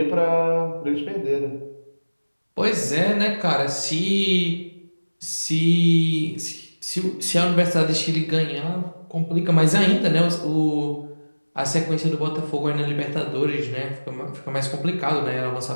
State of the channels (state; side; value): inverted; both; correlation -1.00